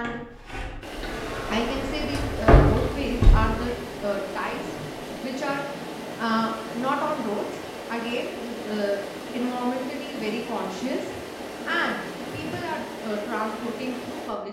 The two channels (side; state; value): both; identical; correlation 1.00